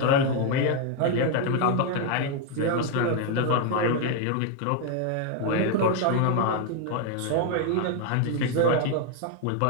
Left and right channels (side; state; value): both; different; correlation 0.01